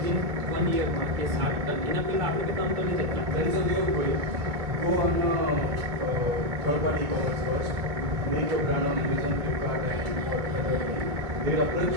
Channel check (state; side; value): late; left; 2.2 ms